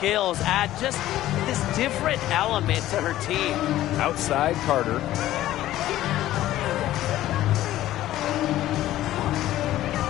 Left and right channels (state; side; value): quieter; right; 14.3 dB